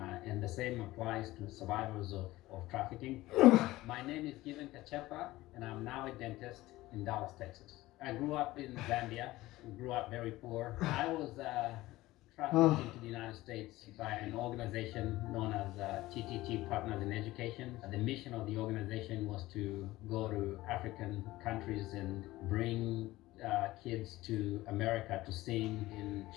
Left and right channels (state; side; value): quieter; right; 17.7 dB